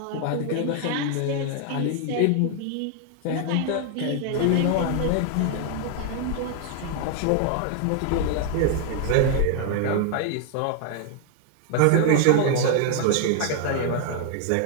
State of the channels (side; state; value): both; different; correlation 0.00